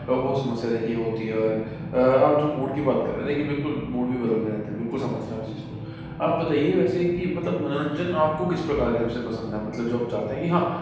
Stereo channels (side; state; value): both; identical; correlation 1.00